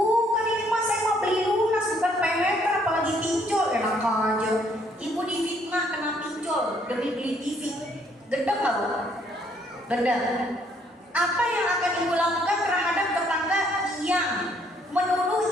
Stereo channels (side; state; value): both; normal; correlation 0.67